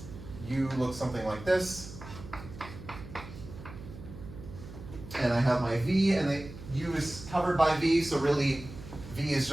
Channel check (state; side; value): noise; right; hum, 14 dB below the sound